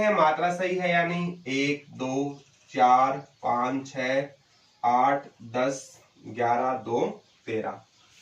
मात्रा सही है या नहीं। 1, 2, 4, 5, 6, 8, 10, 11, 2, 13।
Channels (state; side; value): identical; both; correlation 1.00